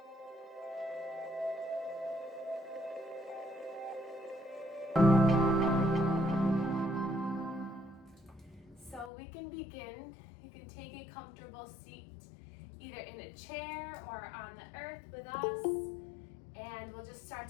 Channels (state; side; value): drops out; right; at 9.1 s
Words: So we can begin. You can take a comfortable seat either in a chair or on the earth with us, and we'll just start